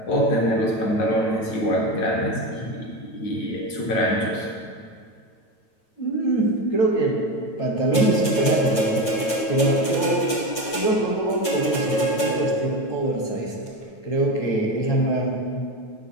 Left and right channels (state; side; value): late; right; 9.2 ms